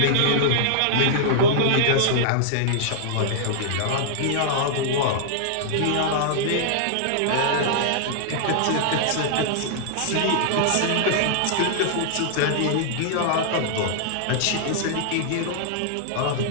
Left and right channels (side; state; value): both; different; correlation -0.01